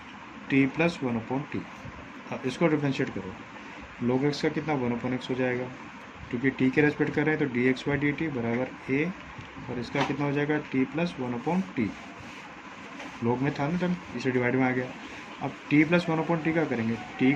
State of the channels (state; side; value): identical; both; correlation 1.00